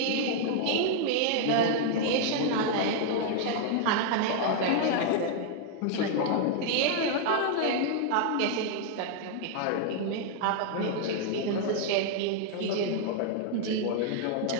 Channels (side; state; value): both; different; correlation 0.00